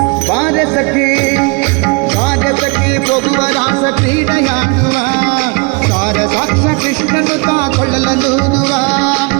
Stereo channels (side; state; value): left; quieter; 30.7 dB